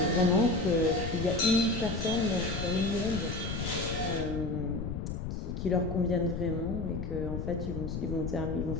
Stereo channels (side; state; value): left; noise; rumble, 4 dB below the sound